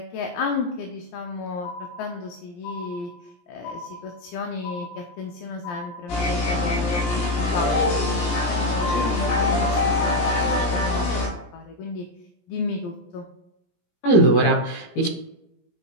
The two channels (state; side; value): late; right; 17 ms